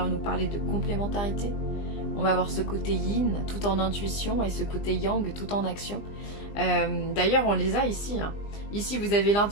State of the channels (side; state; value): right; late; 20 ms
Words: nous parler de complémentarité. On va avoir ce côté yin tout en intuition et ce côté yang tout en action. D'ailleurs, on les a ici. Ici, vous avez